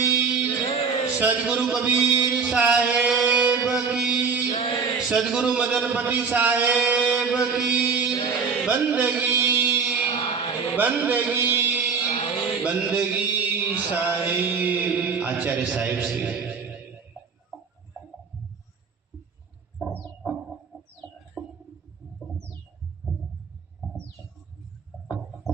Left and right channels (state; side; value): quieter; left; 5.5 dB